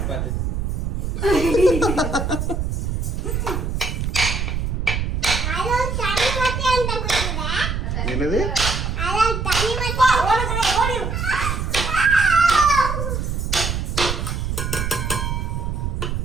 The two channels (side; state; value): right; noise; rumble, 1 dB below the sound